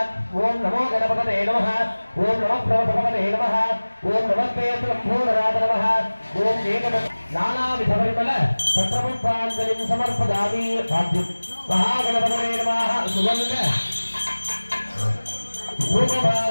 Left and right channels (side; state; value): both; inverted; correlation -1.00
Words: ॐ नमो गणपतये नमः. ॐ नमः प्रवतपतये नमः. ॐ नमस्ते लम्बोदराद नमः. ॐ एकद नानाविधपरिमल पत्रपुष्पाञ्जलिं समर्पयामि. भाग्यं महागणपतये नमः. सुगन्ध